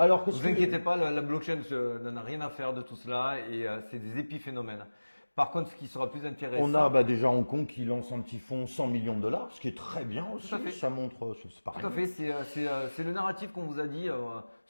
que vous inquiétez pas, la blockchain n'en a rien à faire de tout cela et c'est des épiphénomènes. Par contre, ce qui sera plus intéressant… On a déjà Hong Kong qui lance un petit fonds 100 millions de dollars, ce qui est très bien aussi. Tout à fait. Ça montre… c'est pareil. Tout à fait, c'est le narratif qu'on vous a dit.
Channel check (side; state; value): both; inverted; correlation -1.00